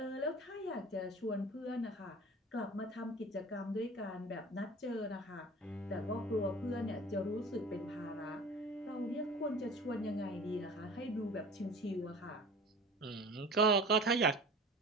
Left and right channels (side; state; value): both; normal; correlation 0.40